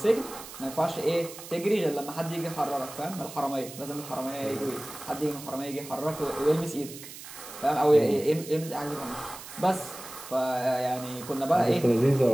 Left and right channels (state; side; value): noise; right; hiss, 14 dB below the sound